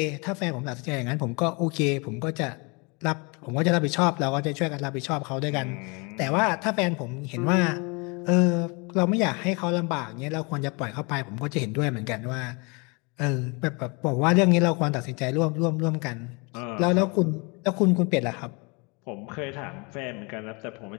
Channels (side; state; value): right; quieter; 30.5 dB